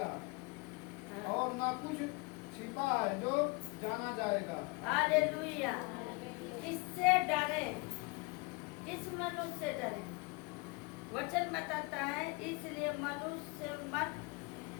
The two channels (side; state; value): right; quieter; 28.3 dB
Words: हाँ। और ना कुछ छिपा है जो जाना जाएगा। हालेलुया। किससे डरे? किस मनुष्य से डरे? वचन बताता है इसलिए मनुष्य